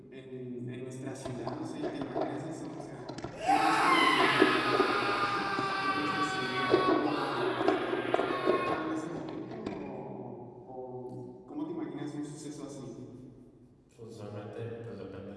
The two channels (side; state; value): both; identical; correlation 1.00